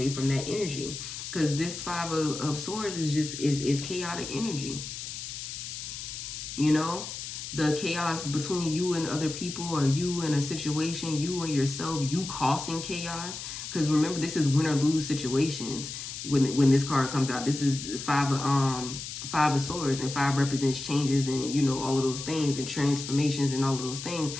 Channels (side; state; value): left; noise; hiss, 8 dB below the sound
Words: from that energy because this 5 of Swords is chaotic energy. The chaos between you and other people, or you and a situation, you and yourself, you causing chaos. Because remember, this is win or lose situations. When this card comes out, this is 5 of Swords, and 5 represents changes and all of those things and transformations and all of those things.